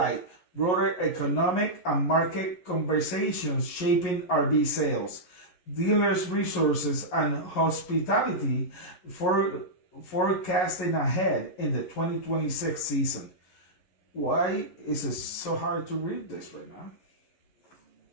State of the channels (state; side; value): late; right; 11 ms